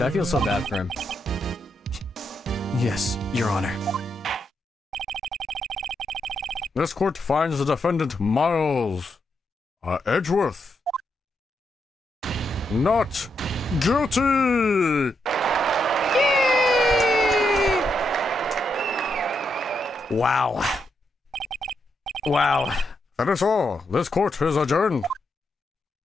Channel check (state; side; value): normal; both; correlation 0.81